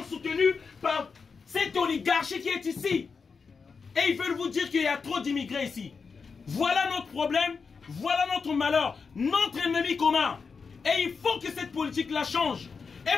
soutenus par cette oligarchie qui est ici. Et ils veulent vous dire qu'il y a trop d'immigrés ici. Voilà notre problème, voilà notre malheur, notre ennemi commun. Et il faut que cette politique-là change.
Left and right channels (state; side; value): quieter; right; 5.2 dB